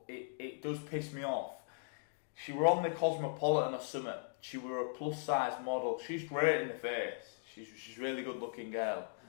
it does piss me off. She were on the Cosmopolitan or something. She were a plus size model. She's great in the face. She's a really good looking girl,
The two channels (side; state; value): right; silent; digital silence